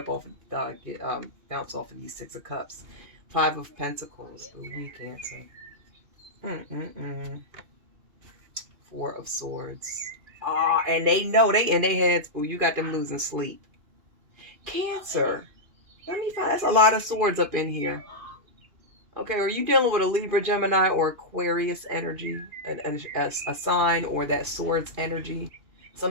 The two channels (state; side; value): late; left; 2.5 ms